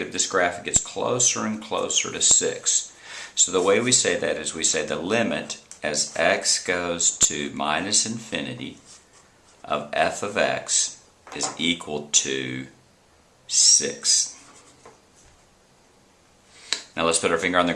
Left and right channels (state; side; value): identical; both; correlation 1.00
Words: this graph gets closer and closer to 6. So the way we say that is we say the limit as x goes to minus infinity of f of x is equal to 6. Now let's put our finger on the